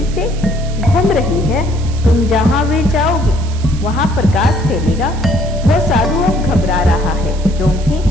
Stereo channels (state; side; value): noise; right; hiss, 18 dB below the sound